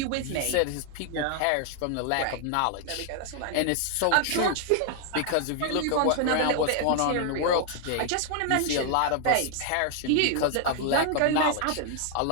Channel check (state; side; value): different; both; correlation 0.00